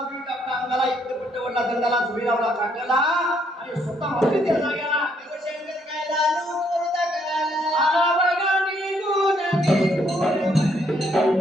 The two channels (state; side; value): normal; both; correlation 0.70